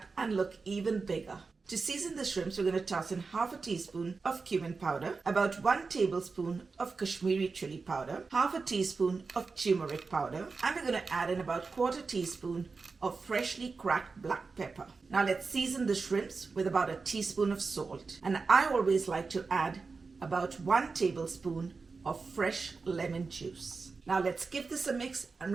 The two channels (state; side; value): quieter; left; 4.4 dB